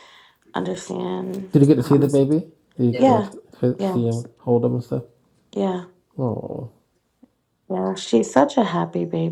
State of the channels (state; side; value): identical; both; correlation 1.00